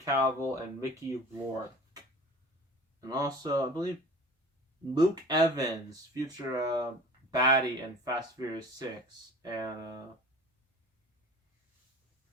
and Mickey Rourke. And also, I believe, Luke Evans, future baddie in Fast and Furious 6. And,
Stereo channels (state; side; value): normal; both; correlation 0.42